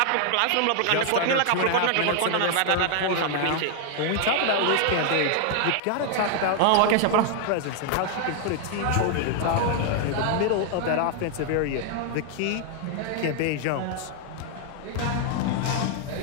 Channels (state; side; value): different; both; correlation 0.00